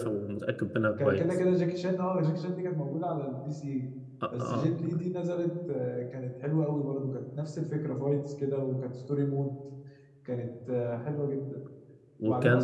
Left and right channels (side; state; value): both; identical; correlation 1.00